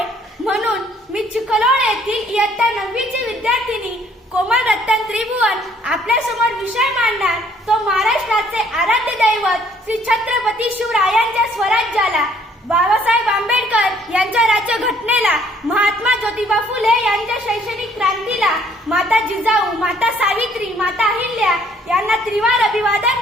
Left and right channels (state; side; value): normal; both; correlation 0.62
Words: म्हणून मी चिखलोड येथील इयत्ता 9वीची विद्यार्थिनी कोमल रतन त्रिभुवन आपल्या समोर विषय मांडणार तो महाराष्ट्राचे आराध्य दैवत श्री छत्रपती शिवरायांच्या स्वराज्याला, बाबासाहेब आंबेडकर यांच्या राज्यघटनेला, महात्मा ज्योतिबा फुले यांच्या शैक्षणिक क्रांतीला, माता जिजाऊ, माता सावित्री, माता अहिल्या यांना त्रिवार